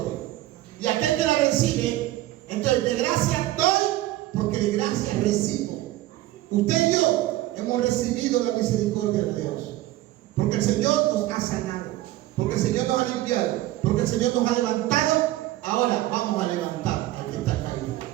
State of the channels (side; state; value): left; quieter; 15.9 dB